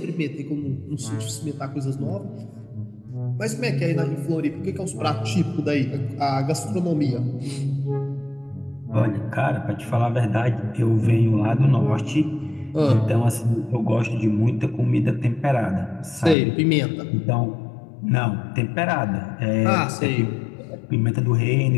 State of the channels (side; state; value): right; drops out; at 16.4 s